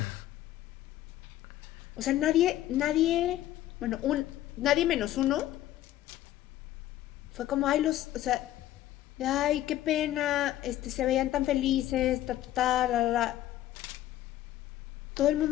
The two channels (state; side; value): quieter; right; 13.7 dB